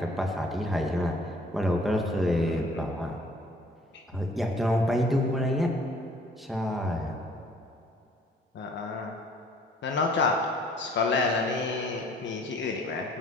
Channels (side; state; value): both; normal; correlation 0.57